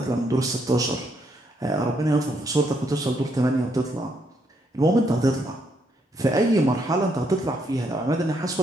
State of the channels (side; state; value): both; normal; correlation 0.75